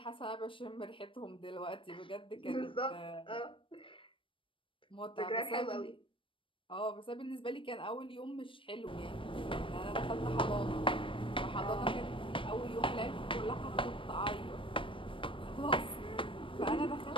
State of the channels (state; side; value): late; right; 0.25 ms